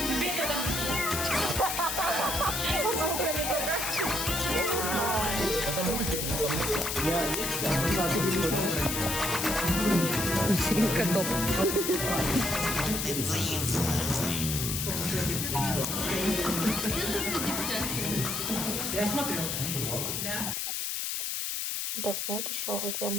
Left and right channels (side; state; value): left; noise; hiss, 1 dB below the sound